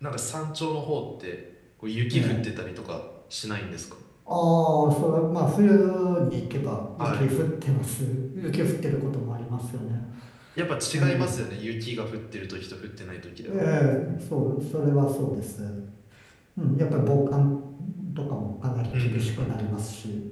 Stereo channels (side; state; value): both; identical; correlation 1.00